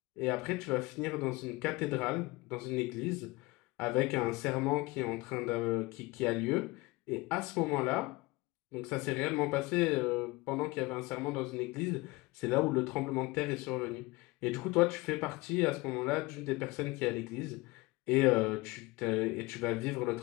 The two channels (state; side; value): quieter; right; 22.7 dB